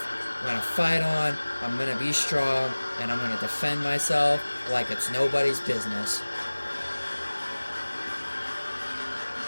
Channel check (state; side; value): inverted; both; correlation -1.00